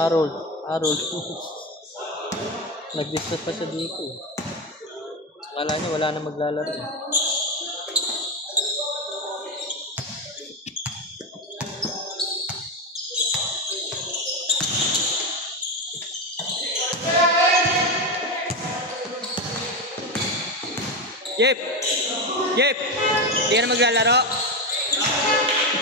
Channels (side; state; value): both; normal; correlation 0.14